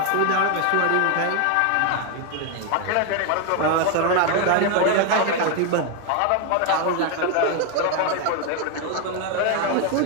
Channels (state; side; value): different; both; correlation 0.01